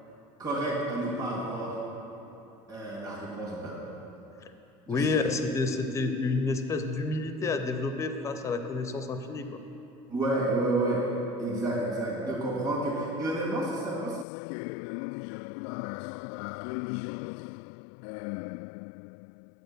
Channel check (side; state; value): right; drops out; at 14.2 s